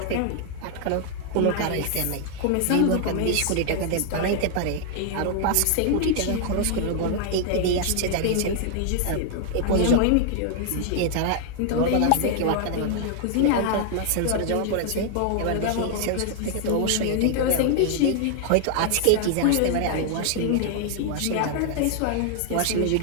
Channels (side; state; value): both; different; correlation 0.00